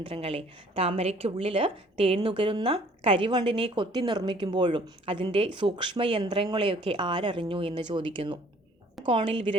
താമരയ്ക്കുള്ളിൽ തേന്നുകരുന്ന കരിവണ്ടിനെ കൊത്തി നിർമ്മിക്കുമ്പോഴും അതിൻ്റെ സൂക്ഷ്മയന്ത്രങ്ങളെയൊക്കെ ആരറിഞ്ഞു എന്ന് ചോദിക്കുന്നു. കോണിൽ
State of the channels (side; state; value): both; normal; correlation 0.57